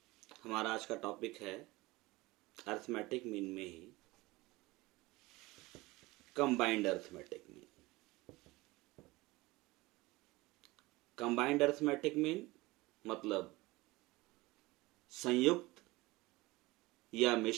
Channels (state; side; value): quieter; left; 21.1 dB